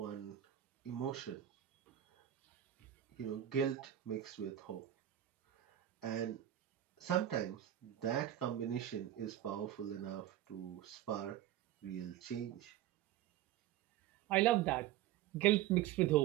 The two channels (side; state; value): left; quieter; 12.3 dB